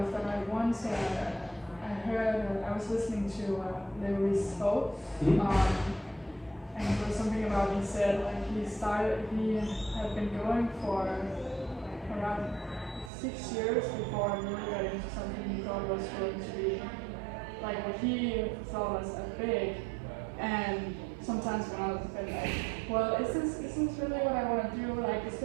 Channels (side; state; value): left; drops out; at 13.1 s